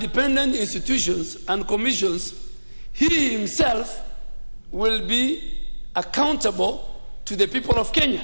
institutions and commissions, he himself will be accountable to the people of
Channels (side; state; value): both; inverted; correlation -1.00